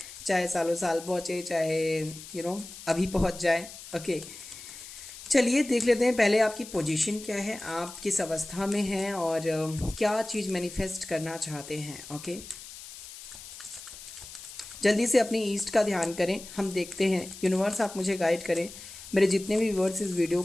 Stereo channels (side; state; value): left; noise; hiss, 14 dB below the sound